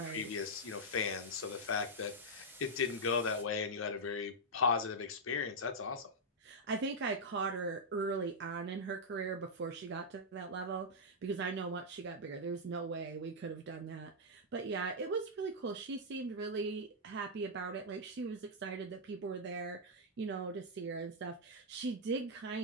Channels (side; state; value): both; normal; correlation -0.07